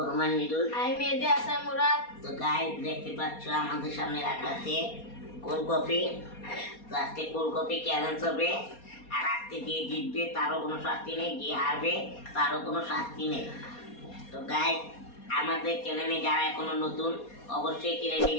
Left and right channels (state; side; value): late; right; 4.2 ms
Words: মিদুল। আমি মেহেদী হাসান মুরাদ। তো গাইস, দেখতে পাচ্ছ আমাদের সামনে রাখা আছে কোল্ড কফি। তো আজকে কোল্ড কফি চ্যালেঞ্জ হবে, আর আজকে যে জিতবে তারও কোনো শাস্তি নেই, যে হারবে তারও কোনো শাস্তি নেই। তো গাইস, আমাদের চ্যানেলে যারা এখনো নতুন, অবশ্যই